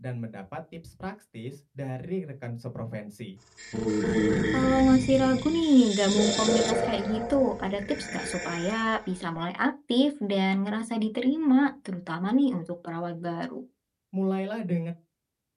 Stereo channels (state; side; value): identical; both; correlation 1.00